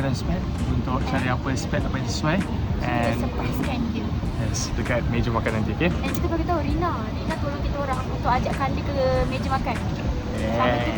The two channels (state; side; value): identical; both; correlation 1.00